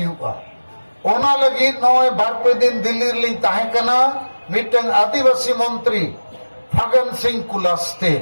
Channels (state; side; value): inverted; both; correlation -1.00